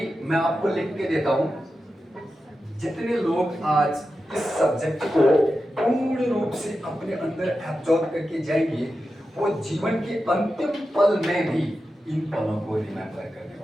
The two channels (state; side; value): normal; both; correlation 0.91